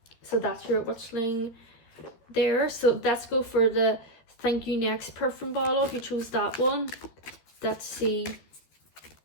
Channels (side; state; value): right; late; 13 ms